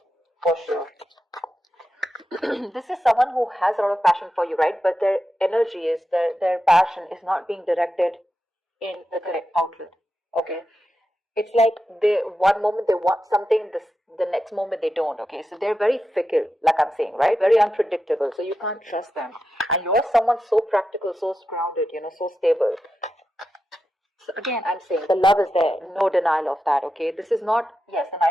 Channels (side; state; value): both; normal; correlation 0.89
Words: For sure. This is someone who has a lot of passion for you, right? But their energy is, their passion is not being directed in the correct outlet. Okay? It's like one moment they want something, the next moment they don't, okay? So they're very fickle, like I'm saying, right? Very unpredictable, so you can't trust them. And you're someone so practical, so grounded, so stable. So again, I'm saying the love is there, no denial of that, okay? This is not, yes, the